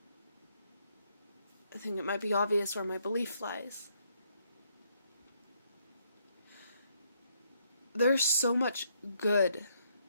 I think it might be obvious where my belief lies. There's so much good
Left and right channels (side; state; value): both; inverted; correlation -0.72